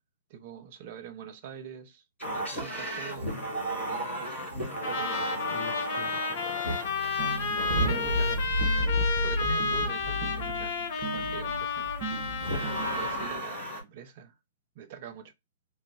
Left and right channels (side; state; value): both; inverted; correlation -0.49